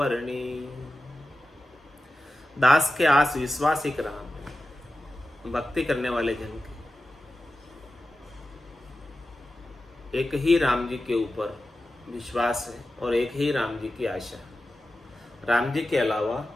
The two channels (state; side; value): normal; both; correlation 0.93